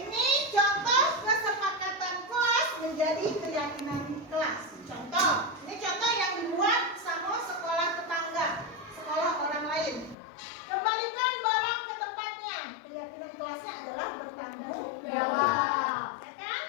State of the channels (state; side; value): drops out; right; at 10.2 s